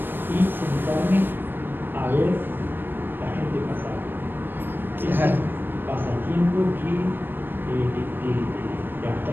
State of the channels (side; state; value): left; late; 0.096 ms